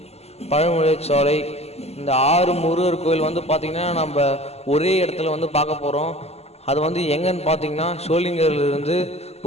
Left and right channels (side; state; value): right; late; 0.30 ms